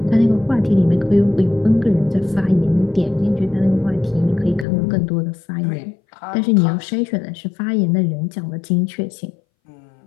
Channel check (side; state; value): right; drops out; at 4.7 s